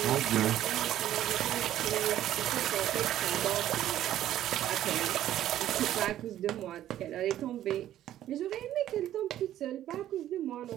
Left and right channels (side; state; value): left; quieter; 12.4 dB